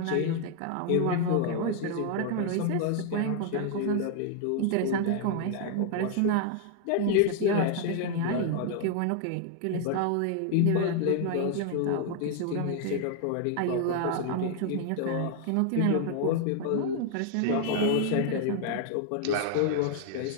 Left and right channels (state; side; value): different; both; correlation 0.00